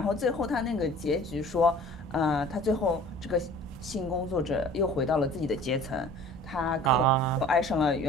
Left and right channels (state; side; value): normal; both; correlation 0.47